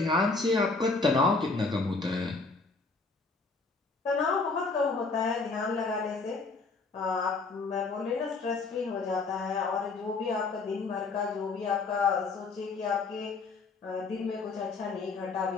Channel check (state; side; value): quieter; right; 3.9 dB